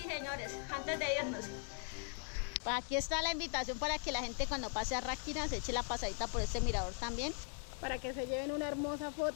señores, antes de irnos. Pues aquí está la invitación para que la gente cuando pase a Ráquira se eche la pasadita por este mirador también. Para que se lleven una hermosa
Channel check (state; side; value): silent; right; 51 dB below the other